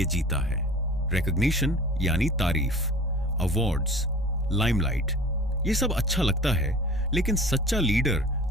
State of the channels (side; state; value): both; normal; correlation 0.42